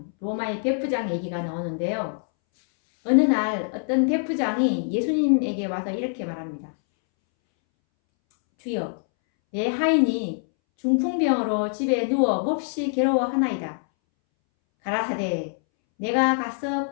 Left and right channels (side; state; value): right; silent; 62 dB below the other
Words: 로마의 백부장 얘기가 나오는데요. 어느 날 어떤 백부장이 예수님에게 와서 이렇게 말합니다. 주여, 내 하인이 중풍병으로 집에 누워 몹시 괴로워하나이다. 가라사대 내가 가서